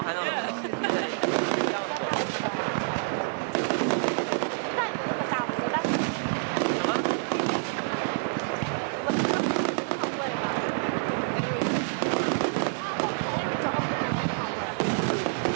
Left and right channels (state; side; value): silent; left; digital silence